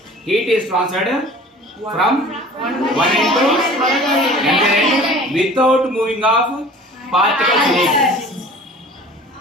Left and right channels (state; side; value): normal; both; correlation 0.45